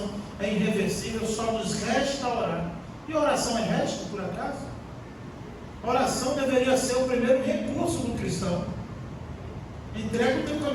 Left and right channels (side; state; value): both; identical; correlation 1.00